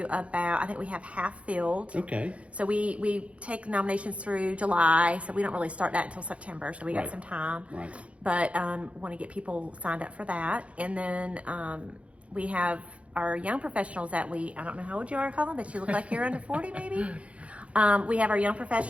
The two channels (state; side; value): late; left; 0.063 ms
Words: I think we have half filled. Okay. So we take nominations through July, so we don't really start that until September, so we got some time. Right. But want to get people signed up for that. And then we have our young professionals that I don't know how old you are, Colin, but you look like you're under 40 maybe. We have our Young